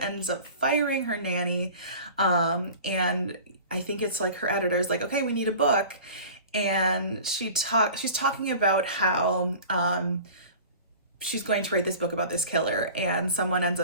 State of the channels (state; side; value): inverted; both; correlation -0.40